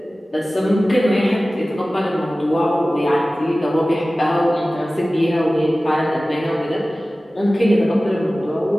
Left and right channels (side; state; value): both; normal; correlation 0.97